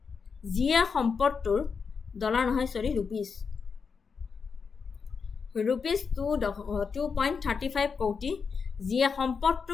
যিয়ে সম্পদটোৰ ৰুপিজ 2.35 কোটি, যিয়ে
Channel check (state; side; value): quieter; right; 5.6 dB